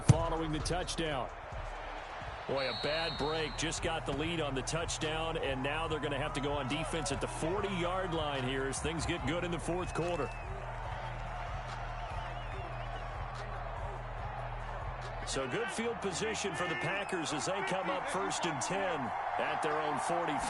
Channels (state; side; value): identical; both; correlation 1.00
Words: following the touchdown. Boy, a bad break. Just got the lead on the touchdown, and now they're going to have to go on defense at the 40-yard line here as things get good in the 4th quarter. So good field position for the Packers as they come up 1st and 10 at their own